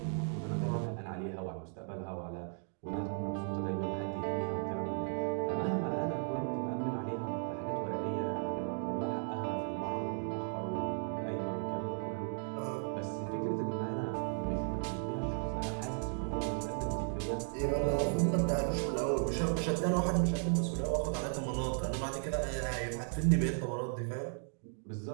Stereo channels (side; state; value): left; silent; 54 dB below the other